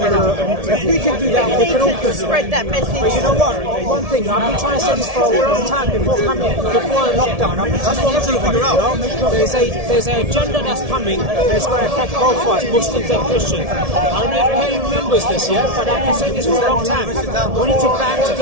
we can do that, we can all spread that message. But you know what? One thing, I've been trying to say this for a long time before lockdown. I've been telling everybody, there's an agenda that's coming that's going to affect both of us, Muslims and Christians. I don't know if Kelly remembers this yet, but I've been saying this for a long time. We need to band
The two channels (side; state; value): left; late; 1.7 ms